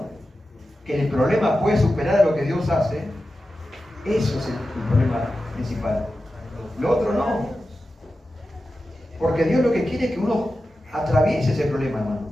que el problema puede superar a lo que Dios hace, eso es el problema principal. Lo otro no. Porque Dios lo que quiere es que uno atraviese ese problema, hermano.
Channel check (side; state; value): both; normal; correlation 0.92